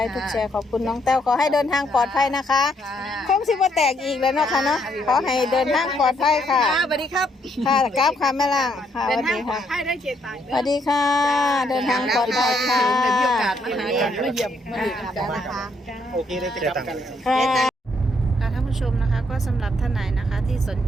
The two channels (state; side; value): normal; both; correlation 0.72